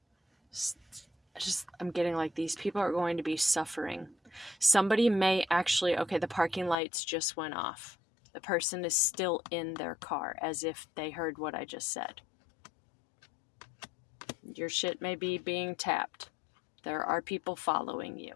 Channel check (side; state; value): right; drops out; at 6.8 s